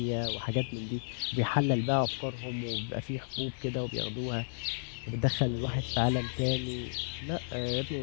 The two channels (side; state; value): right; silent; digital silence